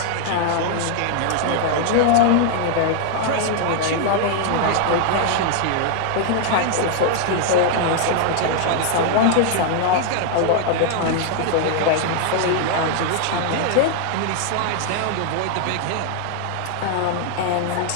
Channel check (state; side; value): different; both; correlation 0.00